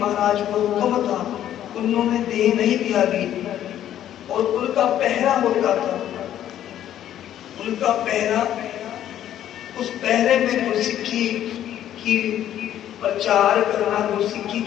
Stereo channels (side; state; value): right; quieter; 11.4 dB